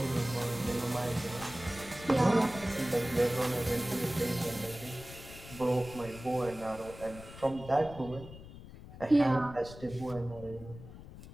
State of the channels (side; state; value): left; noise; rumble, 15 dB below the sound